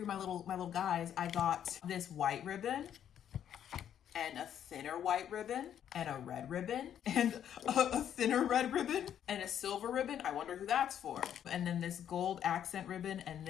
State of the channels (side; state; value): right; quieter; 9.7 dB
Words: my little guys. I got this white ribbon and a thinner white ribbon and a red ribbon and a thinner red ribbon and a silver ribbon. I wonder who that's for. And then this gold accent ribbon and